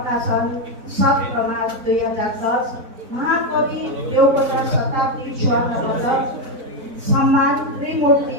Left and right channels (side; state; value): left; late; 4.0 ms